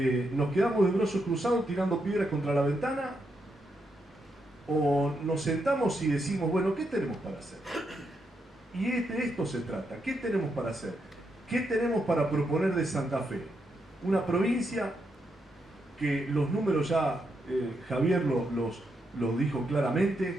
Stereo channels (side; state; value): both; normal; correlation 0.81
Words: nos quedamos de brazos cruzados tirando piedras contra la ventana, o nos sentamos y decimos, bueno, ¿qué tenemos para hacer? Y de esto se trata, ¿qué tenemos para hacer? ¿Qué tenemos para proponer de Santa Fe? Una provincia que los números ya Javier los dijo